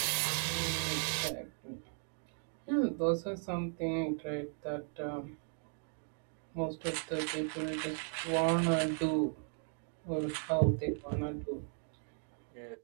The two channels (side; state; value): left; silent; 53 dB below the other